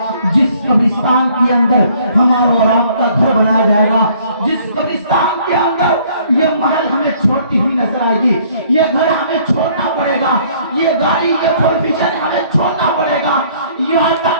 جس قبرستان کے اندر ہمارا اور آپ کا گھر بنایا جائے گا, جس قبرستان کے اندر یہ محل ہمیں چھوٹی ہی نظر آئے گی, یہ گھر ہمیں چھوڑنا پڑے گا, یہ گاڑی یہ پروفیشن ہمیں چھوڑنا پڑے گا. یہاں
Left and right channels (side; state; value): both; inverted; correlation -0.60